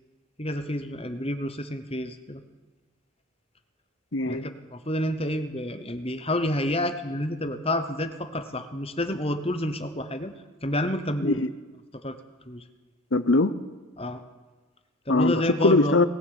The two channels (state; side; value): normal; both; correlation 0.39